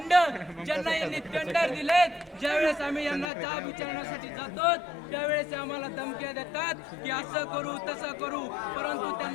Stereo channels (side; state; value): right; drops out; at 3.2 s